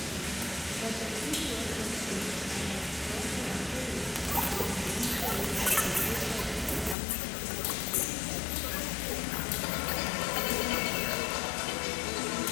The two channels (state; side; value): drops out; right; at 7.0 s